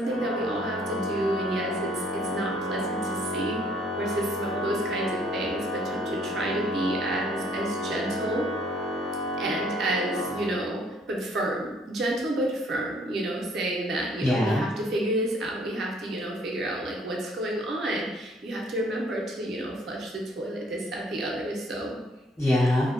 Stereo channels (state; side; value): normal; both; correlation 0.62